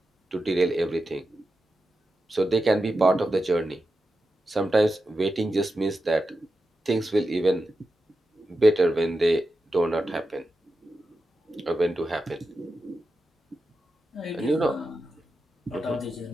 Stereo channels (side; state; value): both; normal; correlation 0.90